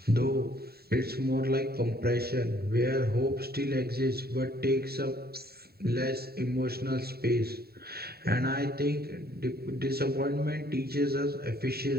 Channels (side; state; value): left; late; 0.45 ms